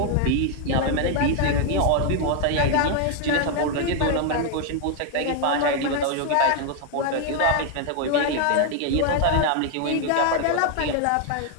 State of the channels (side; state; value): both; different; correlation 0.00